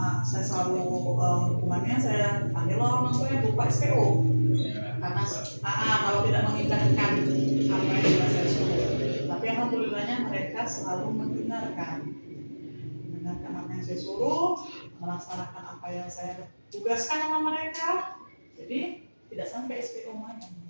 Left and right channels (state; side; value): inverted; both; correlation -1.00